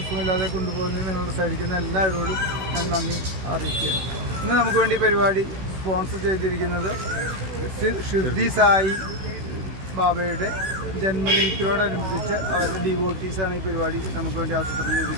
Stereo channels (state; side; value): late; left; 16 ms